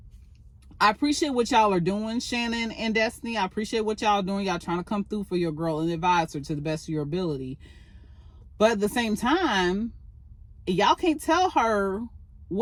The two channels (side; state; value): both; identical; correlation 1.00